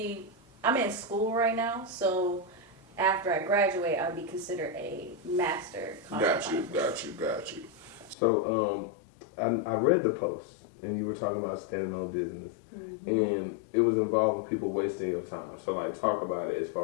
I'm in school right now, so after I graduate, I'll be considered a master cosmetologist. Got you. So, I read the post, and you were talking about standing on business, and it was involving people wasting your time. So, like, talk about it as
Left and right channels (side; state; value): right; drops out; at 8.2 s